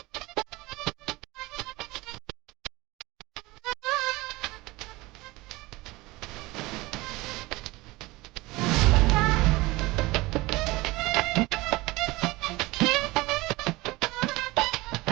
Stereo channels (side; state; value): left; quieter; 21.2 dB